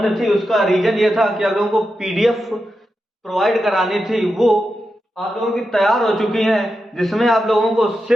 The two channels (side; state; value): both; normal; correlation 0.89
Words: थी उसका रीजन ये था कि आप लोगों को पीडीएफ प्रोवाइड करानी थी, वो आप लोगों की तैयार हो चुकी हैं, जिसमें आप लोगों को